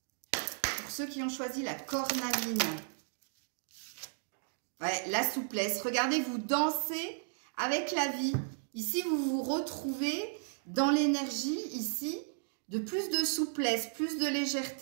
Pour ceux qui ont choisi la cornaline. Ouais, la souplesse. Regardez, vous dansez avec la vie. Ici, vous vous retrouvez dans l'énergie, ici, de plus de souplesse, plus de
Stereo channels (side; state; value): left; silent; digital silence